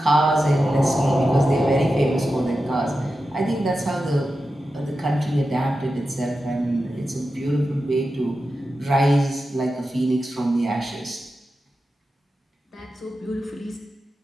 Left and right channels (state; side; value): normal; both; correlation 0.91